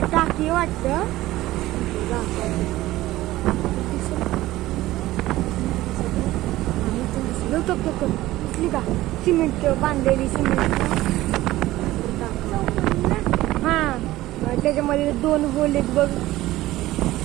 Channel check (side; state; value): left; quieter; 16.5 dB